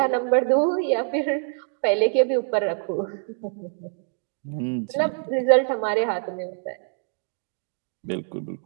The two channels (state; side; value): silent; left; 62 dB below the other